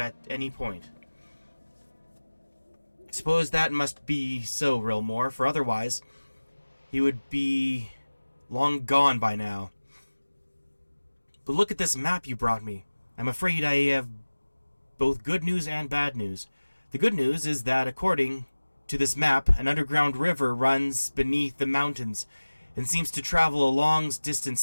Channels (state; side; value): inverted; both; correlation -1.00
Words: any point. I suppose that must be so, Rilmore, for otherwise he would be long gone by now. But look at this map you brought me. I'm afraid I have both good news and bad news. The good news is that, according to this map, an underground river runs beneath the mountains and seems to travel a long distance